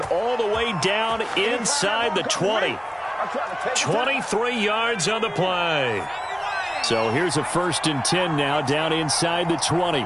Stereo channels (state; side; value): identical; both; correlation 1.00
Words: all the way down inside the 20. 23 yards on the play. So here's a 1st and 10 now down inside the 20.